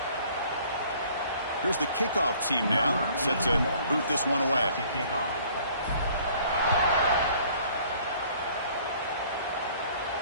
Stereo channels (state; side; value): inverted; both; correlation -0.56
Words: Here's the kickoff team now, set to boot this one away.